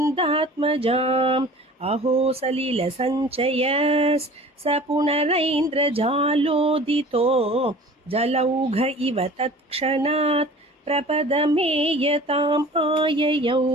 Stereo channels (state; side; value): normal; both; correlation 0.44